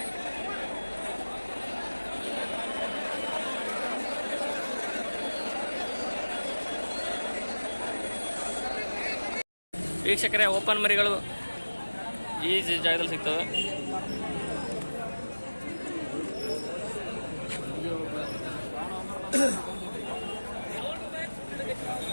ವೀಕ್ಷಕರೇ ಓಪನ್ ಮರಿಗಳು ಈ ಜಾಗದಲ್ಲಿ ಸಿಗ್ತವೆ.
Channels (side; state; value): both; inverted; correlation -1.00